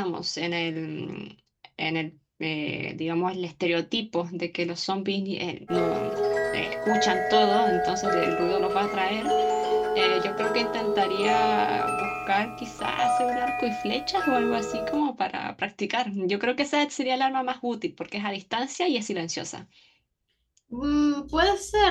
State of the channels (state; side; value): identical; both; correlation 1.00